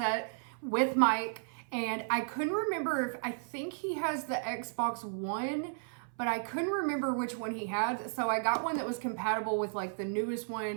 with mic. And I couldn't remember if, I think he has the Xbox One, but I couldn't remember which one he had. So I got one that was compatible with like the newest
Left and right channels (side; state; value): left; silent; 55 dB below the other